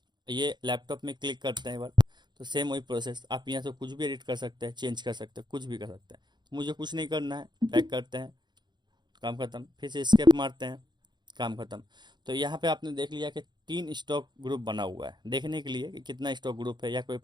ये लैपटॉप में क्लिक करते हैं एक बार, तो सेम वही प्रोसेस, आप यहाँ से कुछ भी एडिट कर सकते हैं, चेंज कर सकते हैं, कुछ भी कर सकते हैं। तो मुझे कुछ नहीं करना है, बैक करते हैं, काम खत्म, फिर से स्केप मारते हैं, काम खत्म। तो यहाँ पे आपने देख लिया कि 3 स्टॉक ग्रुप बना हुआ है, देखने के लिए कि कितना स्टॉक ग्रुप है या कोई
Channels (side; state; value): left; late; 0.21 ms